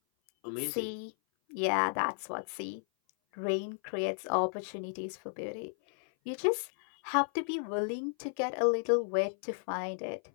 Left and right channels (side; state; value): right; silent; 55 dB below the other